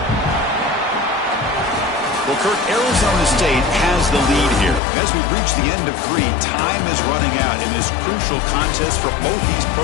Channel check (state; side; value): drops out; right; at 4.8 s